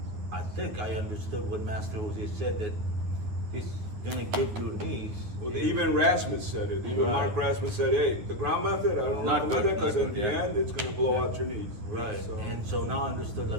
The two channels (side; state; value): left; late; 9.8 ms